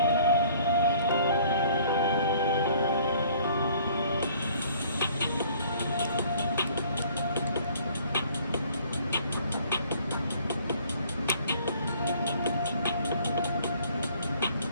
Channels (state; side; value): inverted; both; correlation -0.56